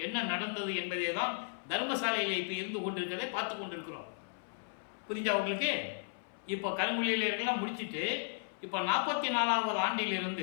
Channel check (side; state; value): right; silent; 54 dB below the other